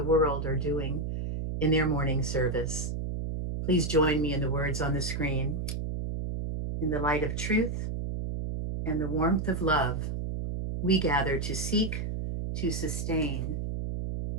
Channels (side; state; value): right; noise; hum, 3 dB below the sound